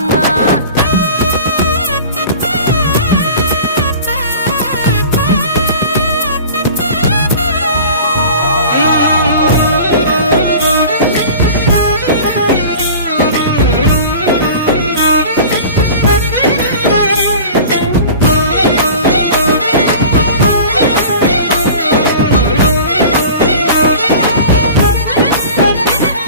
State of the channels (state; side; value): inverted; both; correlation -0.39